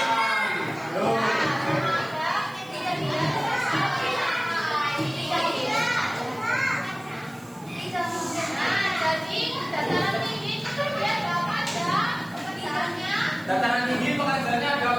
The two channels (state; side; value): noise; right; hiss, 25 dB below the sound